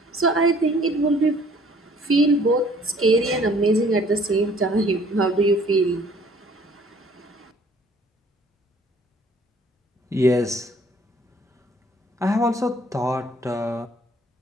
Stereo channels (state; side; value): normal; both; correlation 0.57